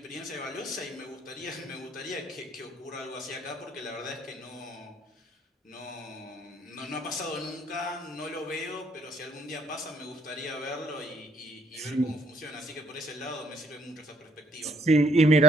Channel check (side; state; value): both; normal; correlation 0.66